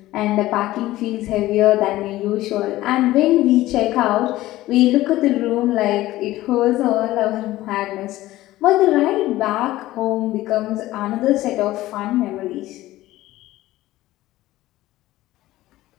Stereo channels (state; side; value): quieter; right; 16.4 dB